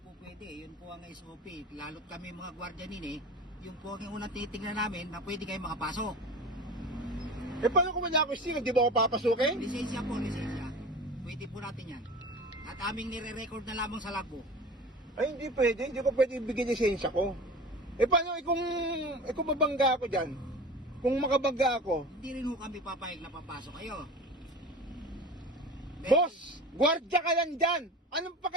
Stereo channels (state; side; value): normal; both; correlation 0.35